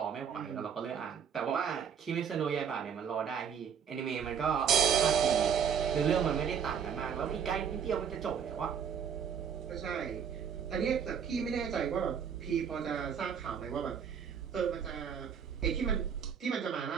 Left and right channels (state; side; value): quieter; left; 7.5 dB